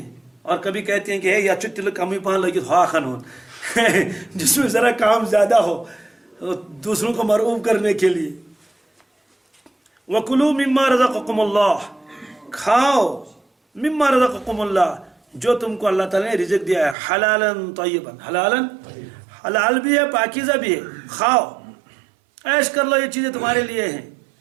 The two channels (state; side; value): drops out; left; at 16.9 s